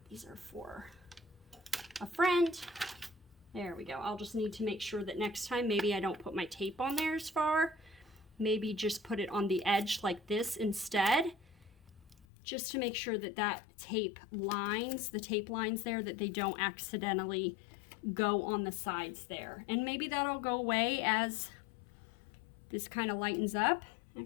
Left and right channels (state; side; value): drops out; right; at 12.2 s